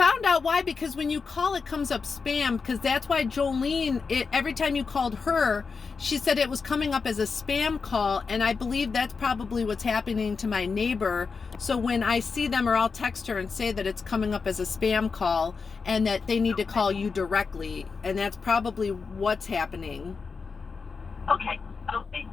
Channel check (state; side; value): quieter; right; 5.0 dB